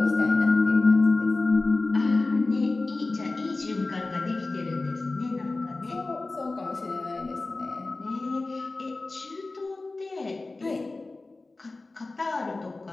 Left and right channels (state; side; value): quieter; right; 3.3 dB